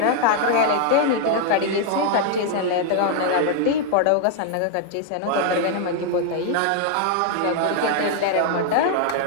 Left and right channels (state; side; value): different; both; correlation 0.00